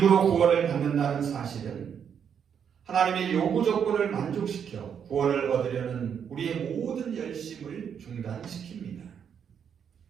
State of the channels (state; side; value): quieter; left; 7.8 dB